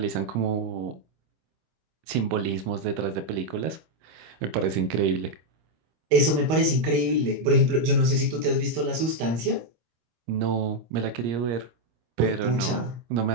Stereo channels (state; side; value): late; left; 26 ms